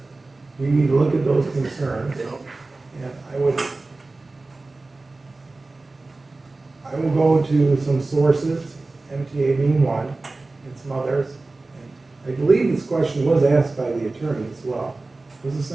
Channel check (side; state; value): left; quieter; 3.3 dB